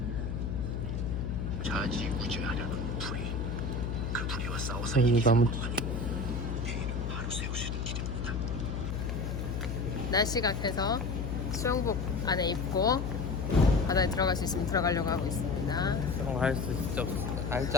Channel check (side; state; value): left; noise; hum, 3 dB below the sound